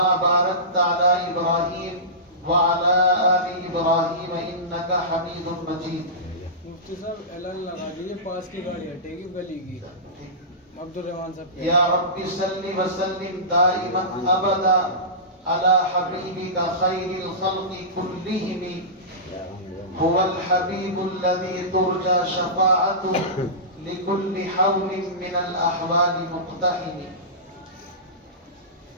باركت على إبراهيم وعلى آل إبراهيم إنك حميد مجيد مفتی صاحب اعلان لگا دیجیے پاس کی گاڑی ہٹے گی گلی کی عبد الرحمان صاحب یا رب صل وسلم دائما ابدا على حبيبك خير الخلق كلهم هو الحبيب الذي ترجى شفاعته لكل حول من الأحوال مقتحم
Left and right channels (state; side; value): normal; both; correlation -0.20